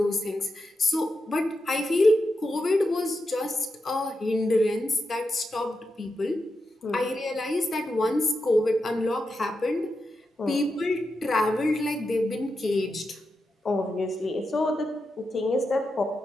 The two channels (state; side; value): normal; both; correlation 0.87